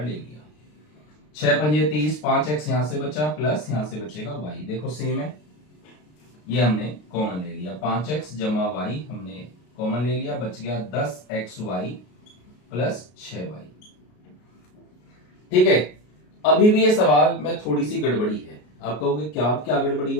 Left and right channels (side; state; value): right; late; 33 ms